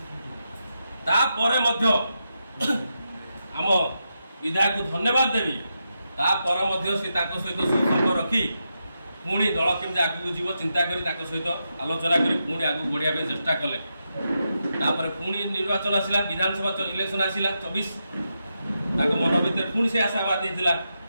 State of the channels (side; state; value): both; inverted; correlation -0.86